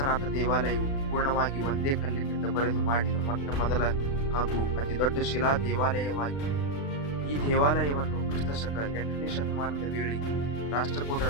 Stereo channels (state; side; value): late; right; 36 ms